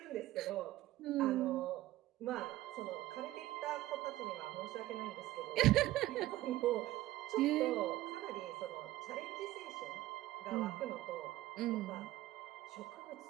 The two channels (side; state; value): left; quieter; 16.1 dB